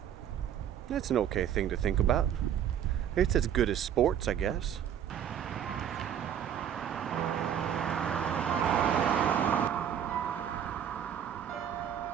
That's an okay thing to think about. It's as good as sports, I guess.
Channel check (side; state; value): left; quieter; 9.5 dB